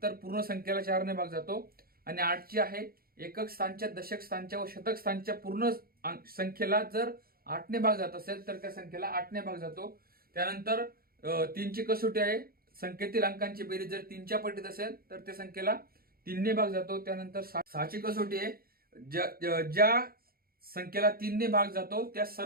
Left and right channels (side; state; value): left; late; 0.43 ms